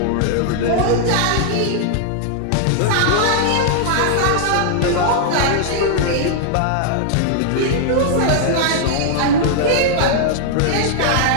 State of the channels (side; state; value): both; different; correlation -0.01